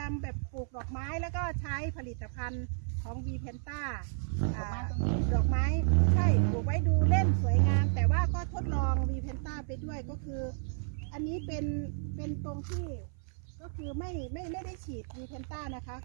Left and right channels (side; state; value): left; silent; 56 dB below the other